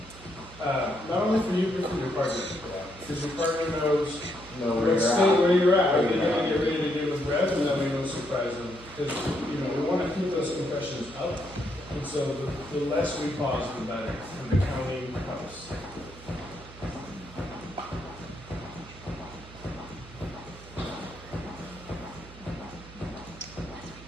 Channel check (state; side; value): noise; right; hum, 18 dB below the sound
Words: not only for you, but for your partner. Because your partner knows Know where let's you're stay at. where you're at. Are Where they you're gonna at. get ready to give a breath, and then we don't surprise them? Because we want to keep those compressions up, and so the less we pause, the better. And the counting helps.